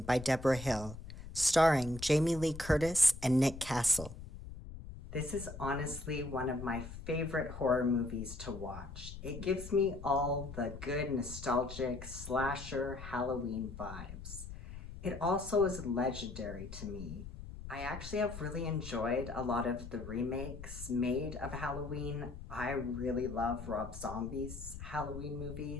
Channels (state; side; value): noise; left; rumble, 11 dB below the sound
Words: by Deborah Hill, starring Jamie Lee Curtis and Nick Castle. This is honestly one of my favorite horror movies to watch. It gives me all the good nostalgic slasher Halloween vibes. It also is legendary to me. I actually have really enjoyed a lot of the remakes made of Halloween. I really love Rob Zombie's Halloween